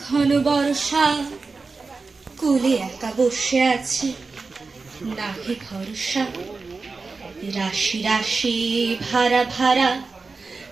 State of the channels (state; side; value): quieter; left; 4.2 dB